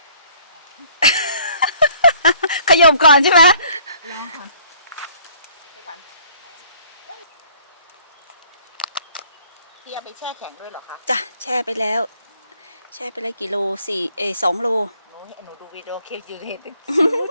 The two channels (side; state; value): both; inverted; correlation -0.58